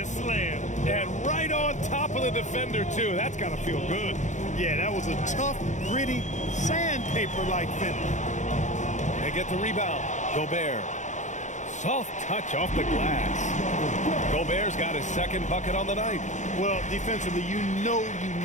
slam. And right on top of the defender, too. That's got to feel good. Yeah, that was a tough, gritty, sandpaper-like finish. They get the rebound. Gobert. Soft touch off the glass. Gobert's got his second bucket on the night. Well, defensively, you know you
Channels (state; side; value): late; right; 0.35 ms